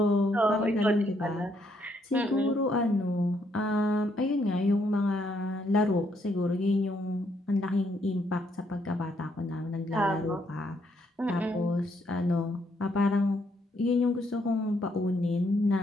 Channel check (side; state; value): both; normal; correlation 0.73